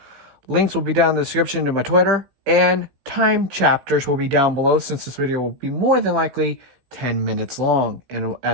Links will be down in the description to my Twitter, and time chapters will be down below since this video will be more than likely 10 minutes long. And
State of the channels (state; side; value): late; left; 16 ms